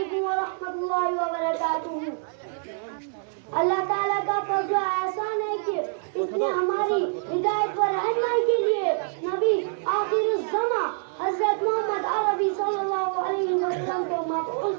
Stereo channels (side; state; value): left; silent; digital silence